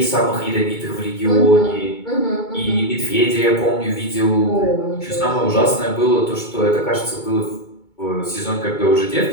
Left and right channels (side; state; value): right; late; 2.2 ms